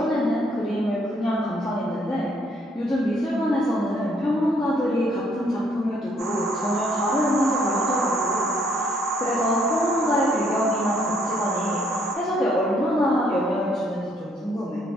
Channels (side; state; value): both; normal; correlation 0.67